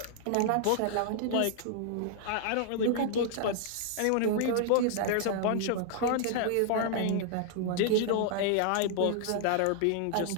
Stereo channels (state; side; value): different; both; correlation -0.01